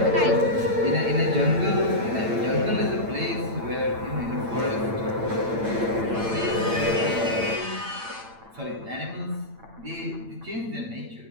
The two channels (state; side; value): late; left; 8.9 ms